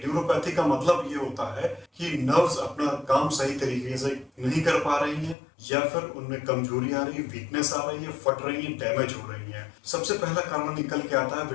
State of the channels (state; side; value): drops out; right; at 5.4 s